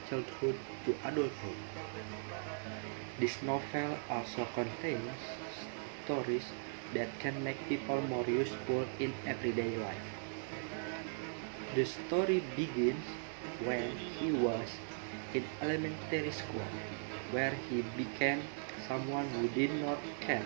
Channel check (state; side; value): silent; left; digital silence